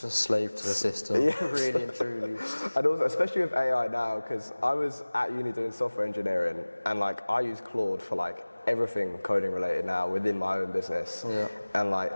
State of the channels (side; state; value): both; inverted; correlation -1.00